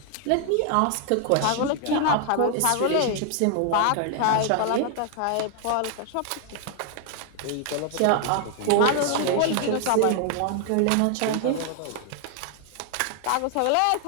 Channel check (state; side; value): different; both; correlation 0.00